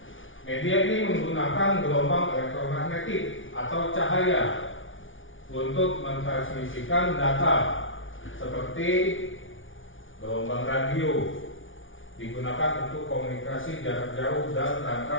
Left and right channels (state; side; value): late; right; 0.57 ms